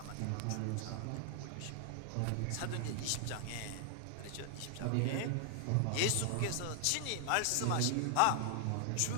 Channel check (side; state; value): both; different; correlation 0.00